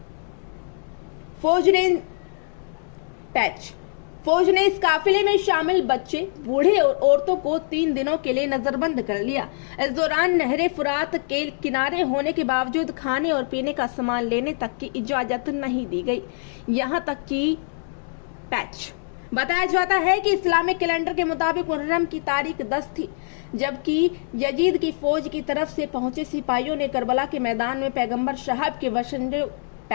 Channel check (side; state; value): right; silent; 63 dB below the other